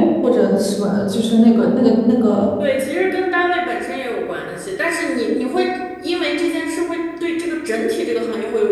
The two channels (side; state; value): both; identical; correlation 1.00